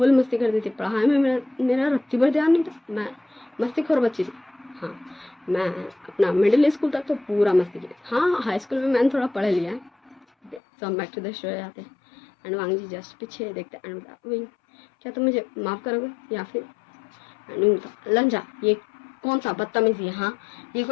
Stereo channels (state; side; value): drops out; right; at 10.6 s